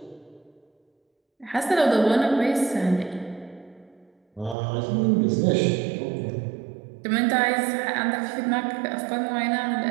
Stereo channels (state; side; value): drops out; left; at 4.5 s